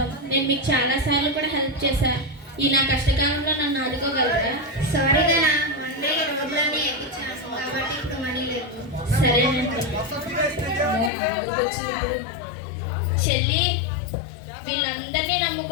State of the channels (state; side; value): drops out; right; at 11.1 s